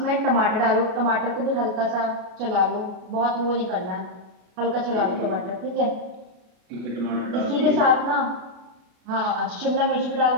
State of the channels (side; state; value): left; late; 33 ms